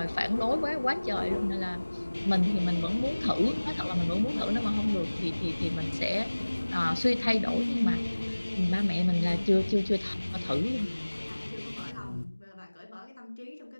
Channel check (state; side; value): inverted; both; correlation -1.00